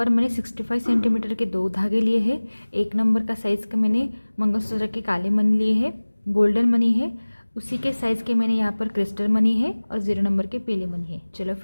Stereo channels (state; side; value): inverted; both; correlation -1.00